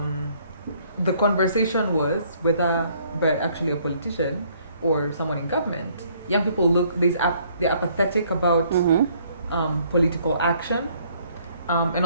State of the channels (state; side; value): inverted; both; correlation -0.64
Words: the conversation was whether, but actually a politician or someone in government, young people they're apathetic about political action. And